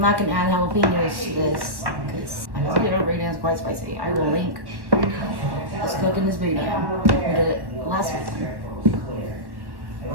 gonna add jalapenos to this because I think it already is quite spicy. I will link us cooking this boudin. We did it last week.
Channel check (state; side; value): late; left; 1.1 ms